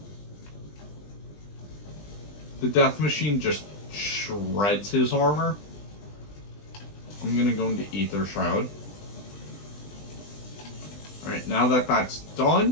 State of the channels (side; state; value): right; late; 20 ms